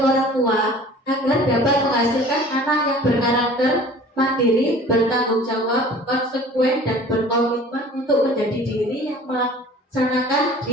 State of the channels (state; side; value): normal; both; correlation 0.46